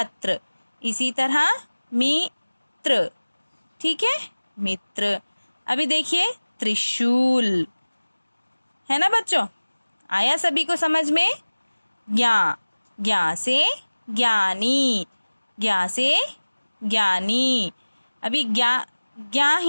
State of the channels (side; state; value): both; inverted; correlation -1.00